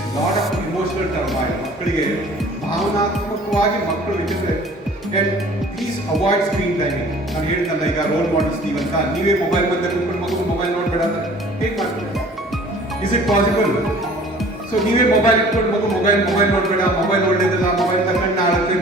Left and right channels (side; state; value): both; normal; correlation 0.49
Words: lot of emotional turmoil. ಮಕ್ಕಳಿಗೆ ಭಾವನಾತ್ಮಕವಾಗಿ ಮಕ್ಕಳು ಇಟ್ಟಿದ್ರೆ ಪ್ಲೀಸ್ ಅವಾಯ್ಡ್ ಸ್ಕ್ರೀನ್ ಟೈಮಿಂಗ್. ನಾನು ಹೇಳಿದ್ನಲ್ಲ, ಈಗ ರೋಲ್ ಮಾಡೆಲ್ಸ್ ನೀವಂತ ನೀವೇ ಮೊಬೈಲ್ ಬಂದ ಕುತ್ಕೊಂಡು ಮಗು ಮೊಬೈಲ್ ನೋಡಬೇಡ ಅಂತ ಹೇಗೆ ಮಾಡ್ತೀವಿ? Is it possible? ಸೊ ನೀವೇ ಮೊಬೈಲ್ ಇಟ್ಕೊಂಡು ಮಗು ಮೊಬೈಲ್ ನೋಡಬೇಡ, ಮೊಬೈಲ್ ಒಳ್ಳೇದಲ್ಲ, ಮೊಬೈಲ್ ತಗೊಂಡು ಆಗುತ್ತೆ,